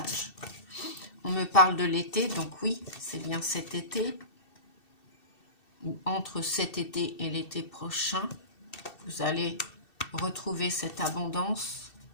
On me parle de l'été, donc oui, c'est bien cet été. Ou entre cet été et l'été prochain, vous allez retrouver cette abondance,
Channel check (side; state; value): right; late; 2.7 ms